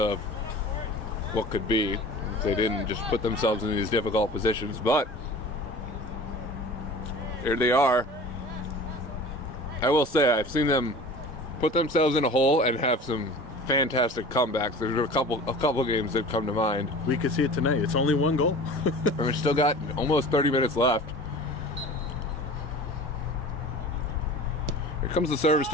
what could be if they didn't just put themselves in these difficult positions. But here they are. I will say I've seen them put themselves in a hole and have some fantastic comebacks. There's a couple games that come to mind. We can see it tonight. It's only one goal. And we've still got almost 30 minutes left. Here comes the service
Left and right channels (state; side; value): normal; both; correlation 0.40